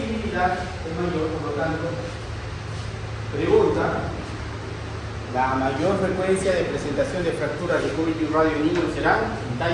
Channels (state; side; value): identical; both; correlation 1.00